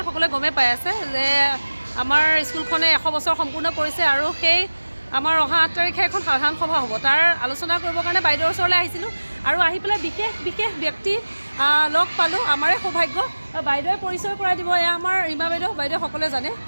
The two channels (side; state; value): both; inverted; correlation -1.00